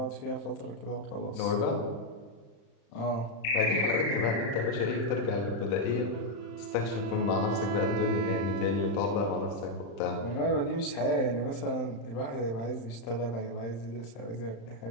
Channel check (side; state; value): right; late; 35 ms